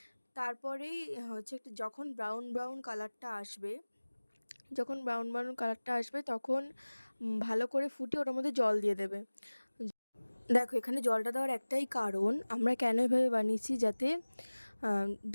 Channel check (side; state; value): both; inverted; correlation -1.00